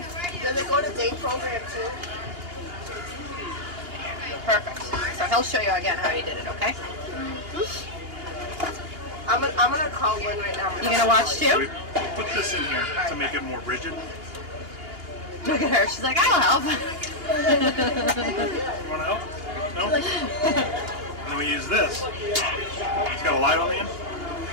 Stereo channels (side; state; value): left; late; 2.8 ms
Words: Does it go to day program too? Perfect. So he'll show you again how he did it, okay? I'm gonna call Lynn right now. You gonna watch We too? put this in here to make it more rigid. Look at her. She's like, I'll help. You want to help? No? And then we use this. It's got a light on the end.